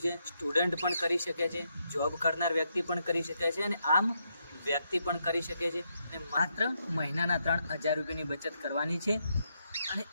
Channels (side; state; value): both; inverted; correlation -0.79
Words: છે। સ્ટુડન્ટ પણ કરી શકે છે, જોબ કરનાર વ્યક્તિ પણ કરી શકે છે અને આમ વ્યક્તિ પણ કરી શકે છે। અને માત્ર મહિનાના 3000 રૂપિયાની બચત કરવાની છે અને